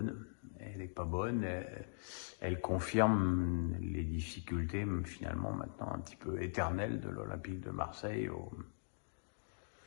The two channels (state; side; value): silent; right; digital silence